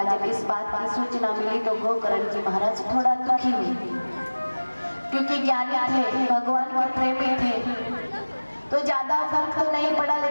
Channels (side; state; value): both; inverted; correlation -1.00